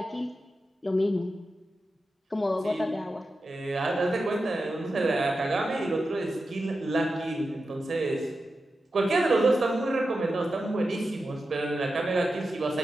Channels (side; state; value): both; normal; correlation 0.91